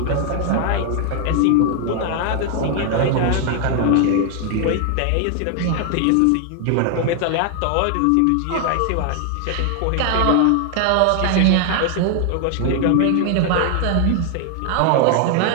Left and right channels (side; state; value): both; different; correlation 0.00